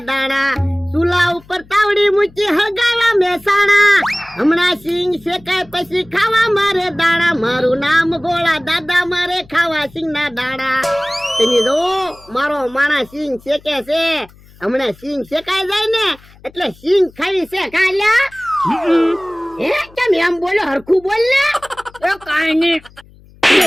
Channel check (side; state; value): left; noise; hum, 25 dB below the sound